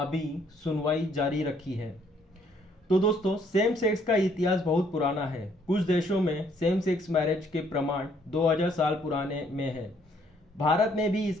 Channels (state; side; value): normal; both; correlation 0.66